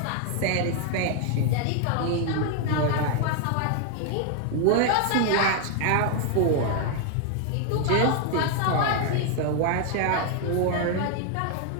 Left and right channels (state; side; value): different; both; correlation 0.00